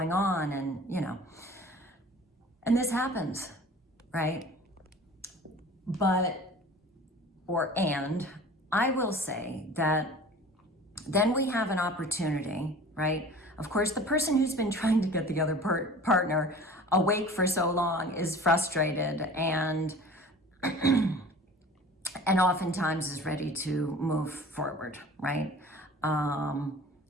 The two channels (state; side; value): normal; both; correlation 0.42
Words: on. And, and this happens, right? And I will say that then we have an opportunity, right? Of course, the person who's been trying to get the other partner awake for so long is frustrated and oftentimes is ready to move forward, right?